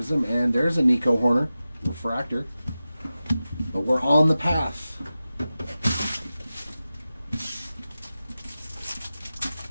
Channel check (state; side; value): inverted; both; correlation -0.94